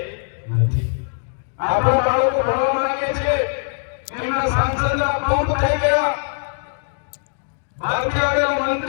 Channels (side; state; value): right; silent; digital silence